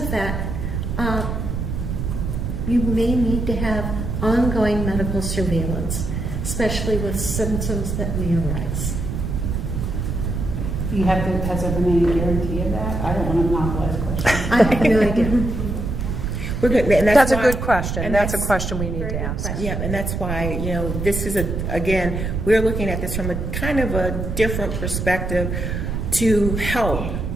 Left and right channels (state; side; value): noise; right; rumble, 3 dB below the sound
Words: that, you may need to have ongoing medical surveillance, especially with symptoms that may arise. Has there been any guarantee of that? I don't want to monopolize questions. I have no idea. We're good. And That's a why- good question. and That's a question we need Very to good ask. question. Yeah, and that's why, this is again, we're looking at this from a kind of a different perspective to help.